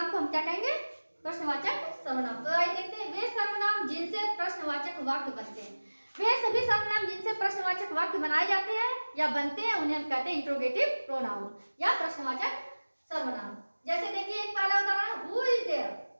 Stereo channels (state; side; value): inverted; both; correlation -1.00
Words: को हम क्या कहेंगे? प्रश्नवाचक सर्वनाम। तो आइए देखते हैं वे सर्वनाम जिनसे प्रश्नवाचक वाक्य बनते हैं। वे सभी सर्वनाम जिनसे प्रश्नवाचक वाक्य बनाए जाते हैं या बनते हैं उन्हें हम कहते हैं इंट्रोगेटिव प्रोनाउन या प्रश्नवाचक सर्वनाम। जैसे देखिए एक पहला उदाहरण, हु इज देयर।